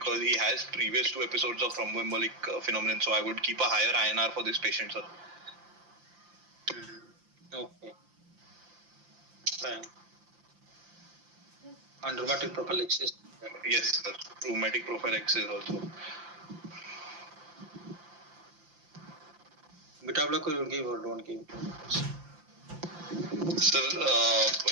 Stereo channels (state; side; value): late; left; 5.8 ms